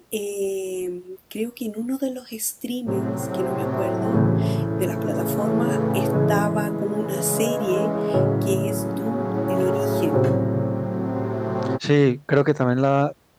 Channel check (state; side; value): identical; both; correlation 1.00